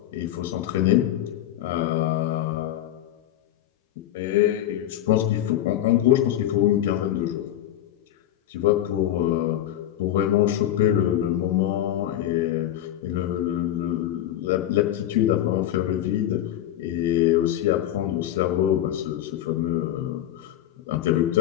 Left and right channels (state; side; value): quieter; right; 12.3 dB